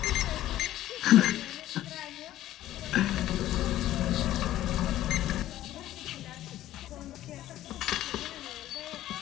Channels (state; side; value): quieter; right; 13.8 dB